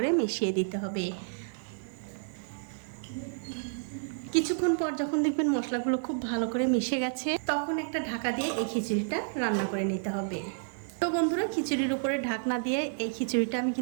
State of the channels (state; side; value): silent; left; digital silence